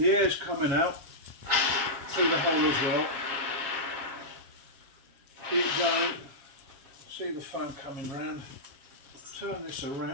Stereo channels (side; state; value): left; late; 7.3 ms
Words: air's coming out through the hole as well. Keep going, see the foam coming round. Turn this